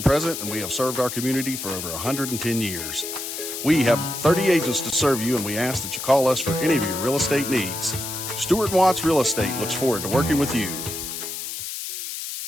present, and we have served our community for over 110 years. We have 30 agents to serve you, and we ask that you call us for any of your real estate needs. Stewart and Watts Real Estate looks forward to working with you.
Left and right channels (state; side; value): noise; left; hiss, 6 dB below the sound